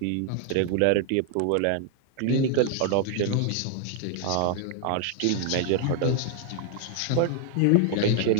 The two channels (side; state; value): both; different; correlation 0.00